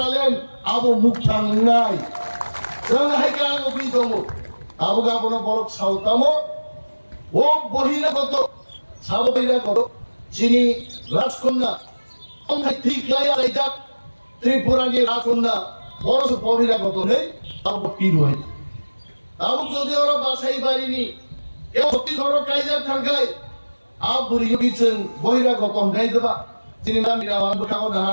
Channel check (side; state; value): both; inverted; correlation -1.00